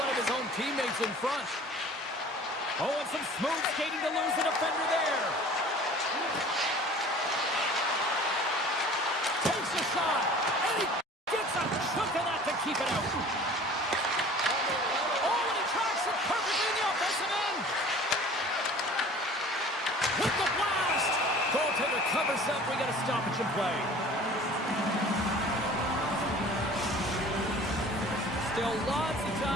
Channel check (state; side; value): normal; both; correlation 0.46